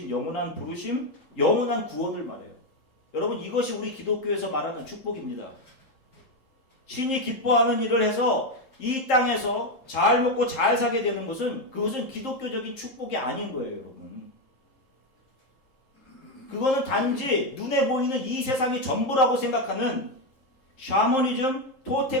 영원한 부르심, 영원한 구원을 말해요. 여러분 이것이 우리 기독교에서 말하는 축복입니다. 신이 기뻐하는 일을 해서 이 땅에서 잘 먹고 잘 사게 되는 것은 그것은 기독교적인 축복이 아닌 거예요, 여러분. 그거는 단지 눈에 보이는 이 세상이 전부라고 생각하는 샤머니즘,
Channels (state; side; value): late; right; 3.7 ms